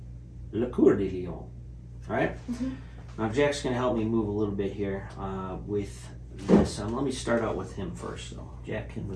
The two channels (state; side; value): identical; both; correlation 1.00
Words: Le Coeur de Lion. All right? Now Jack's going to help me move a little bit here with this. Let me start out with him first, though. Jack can